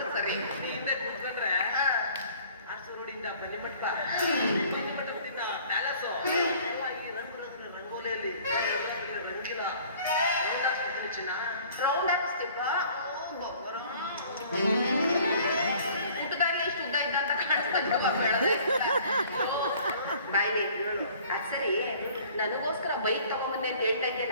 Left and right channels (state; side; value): inverted; both; correlation -0.53